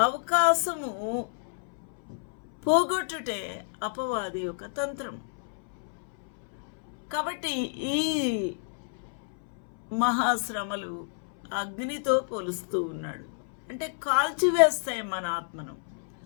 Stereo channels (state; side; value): silent; right; 59 dB below the other